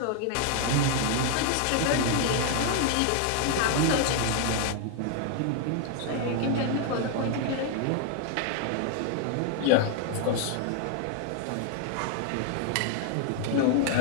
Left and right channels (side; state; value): both; different; correlation 0.00